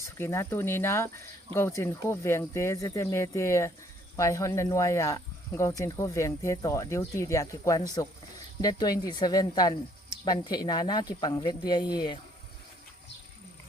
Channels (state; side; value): normal; both; correlation 0.64